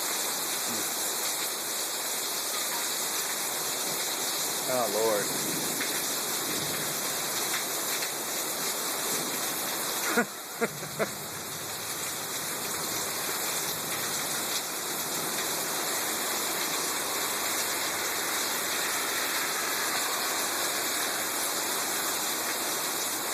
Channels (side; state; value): both; identical; correlation 1.00